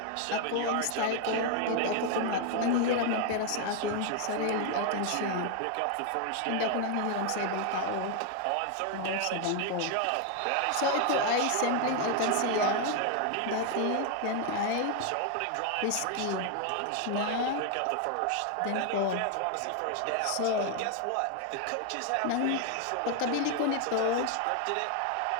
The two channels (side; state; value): both; different; correlation 0.01